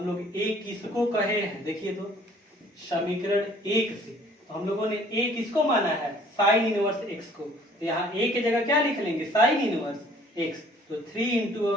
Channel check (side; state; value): both; normal; correlation 0.55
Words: लोग a किसको कहे हैं, देखिए तो समीकरण 1 से तो हम लोगों ने a किसको माना है, साइन इनवर्स x को। तो यहाँ a की जगह क्या लिख लेंगे, साइन इनवर्स x। तो 3 इंटू